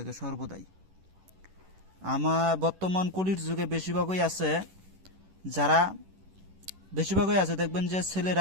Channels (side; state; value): left; late; 11 ms